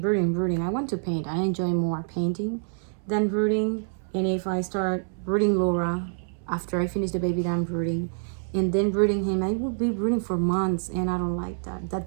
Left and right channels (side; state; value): left; silent; 61 dB below the other